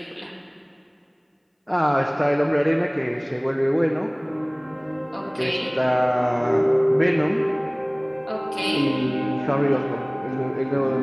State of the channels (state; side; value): identical; both; correlation 1.00